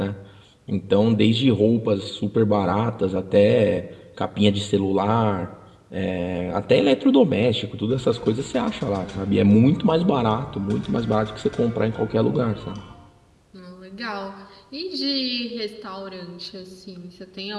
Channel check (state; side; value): identical; both; correlation 1.00